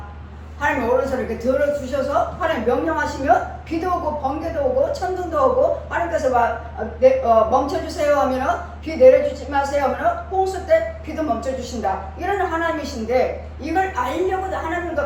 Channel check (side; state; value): both; identical; correlation 1.00